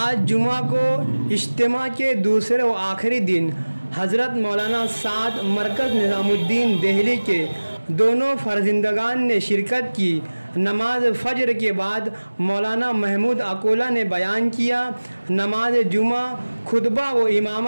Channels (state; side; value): inverted; both; correlation -1.00